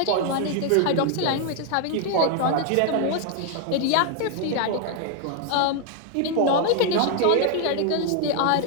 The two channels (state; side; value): different; both; correlation 0.00